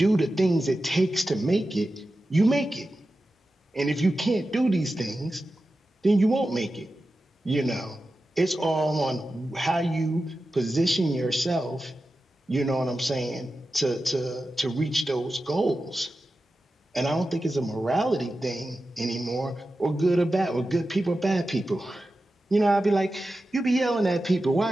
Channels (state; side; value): normal; both; correlation 0.93